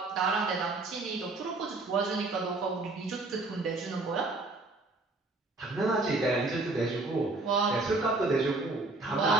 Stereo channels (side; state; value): left; quieter; 3.3 dB